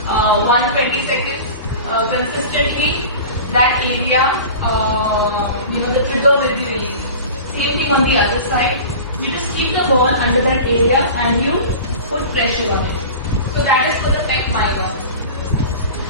120 seconds consistently, that area, the trigger will be released. Same thing on the other side. You just keep the ball under that area and you put pressure on it. So that is for the pec minor.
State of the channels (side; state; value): both; inverted; correlation -0.35